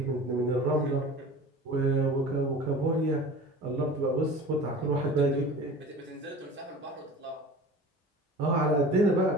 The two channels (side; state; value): both; normal; correlation 0.39